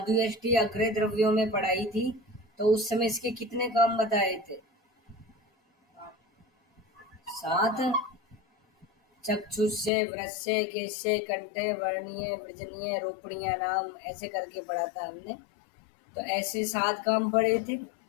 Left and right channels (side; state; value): right; drops out; at 9.9 s